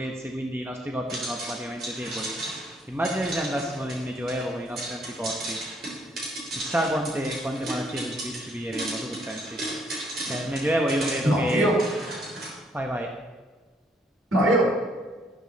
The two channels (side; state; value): both; normal; correlation 0.67